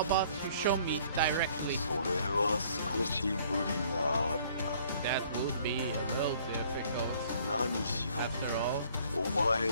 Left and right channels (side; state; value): both; inverted; correlation -0.59